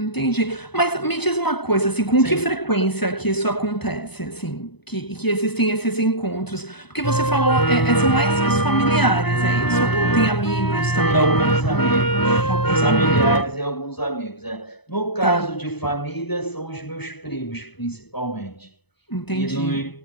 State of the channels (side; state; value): right; late; 0.98 ms